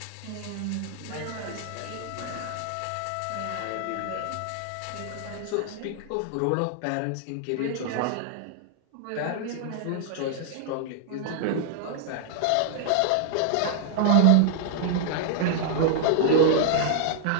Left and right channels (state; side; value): different; both; correlation 0.00